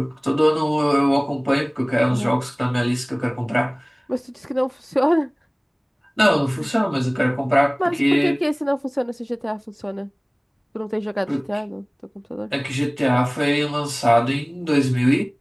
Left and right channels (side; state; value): both; identical; correlation 1.00